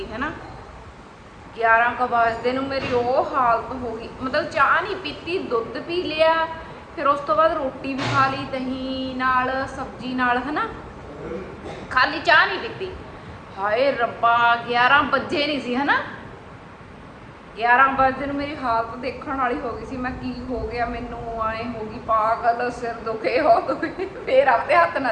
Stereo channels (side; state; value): both; identical; correlation 1.00